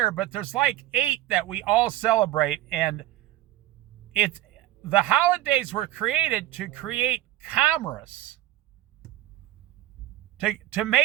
but there's like 8 that we all celebrate. And the holidays were created to create commerce, to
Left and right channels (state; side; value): quieter; left; 14.9 dB